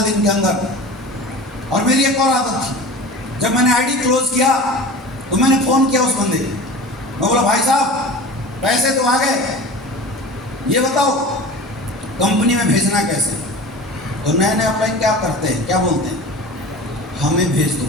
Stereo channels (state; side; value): normal; both; correlation 0.36